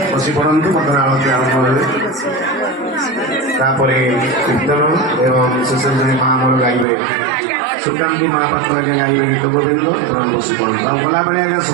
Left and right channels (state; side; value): drops out; left; at 6.9 s